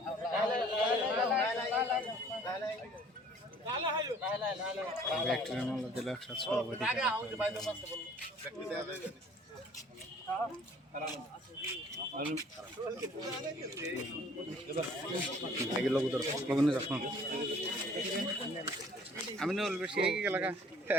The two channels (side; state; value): both; normal; correlation 0.54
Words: আমি না বেশি এলাকা